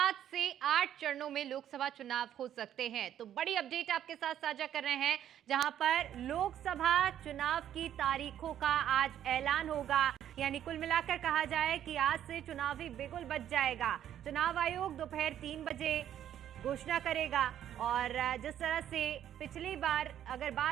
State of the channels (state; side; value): quieter; left; 10.7 dB